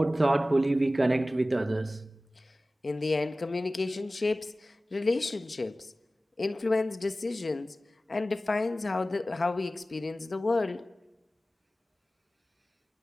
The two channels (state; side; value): normal; both; correlation 0.96